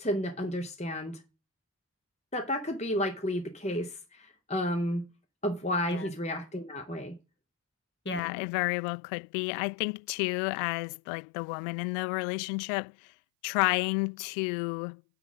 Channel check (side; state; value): right; drops out; at 8.2 s